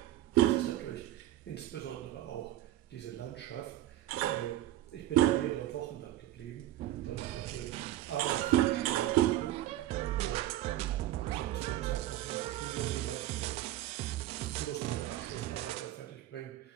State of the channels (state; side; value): quieter; left; 14.1 dB